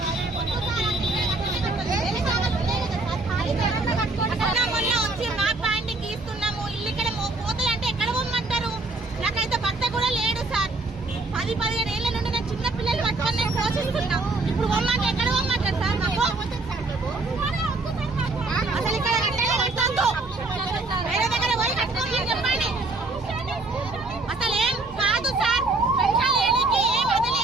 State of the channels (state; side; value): quieter; left; 3.3 dB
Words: వచ్చి మా పాయింట్ గీస్తున్నాము. ఇల్లు ఇక్కడ పోతాయి అంటే ఎక్కడ పోమంటారు? నాకైతే భర్త కూడా లేడు సార్. 10-15 ఏళ్ల నుండి నేను చిన్న పిల్లలు పట్టుకొని నేను పోషిస్తున్నా. ఇప్పుడు పోమంటే ఎక్కడ పోమంటారు సార్? మాకు అసలు ఇక్కడ కట్టేది వేరే దగ్గర పోయి కట్టుకోమని చెప్పండి. అసలు ఏం కాదు సార్. పెన్షన్ లేనికి ఏం